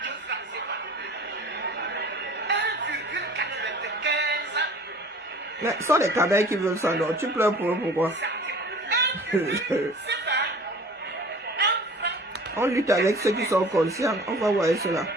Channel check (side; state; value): both; normal; correlation 0.45